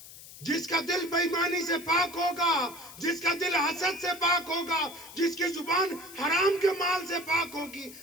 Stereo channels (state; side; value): noise; left; hiss, 17 dB below the sound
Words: جس کا دل بے ایمانی سے پاک ہوگا, جس کا دل حسد سے پاک ہوگا, جس کی زبان حرام کے مال سے پاک ہوگی.